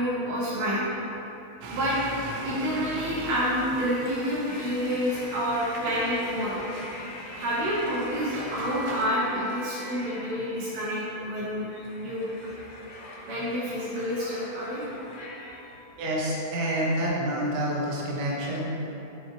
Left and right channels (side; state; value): left; late; 16 ms